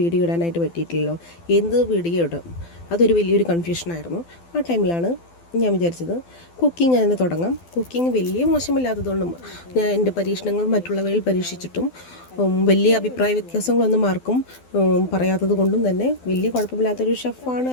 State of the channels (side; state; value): right; late; 12 ms